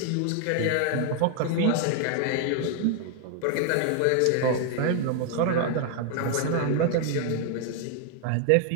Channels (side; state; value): both; different; correlation 0.00